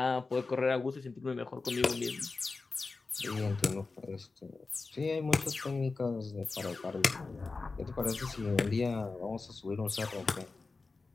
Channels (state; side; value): quieter; right; 3.9 dB